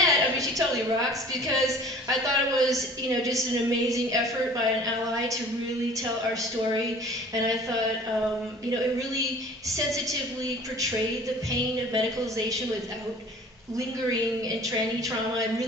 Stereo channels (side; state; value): both; normal; correlation 0.47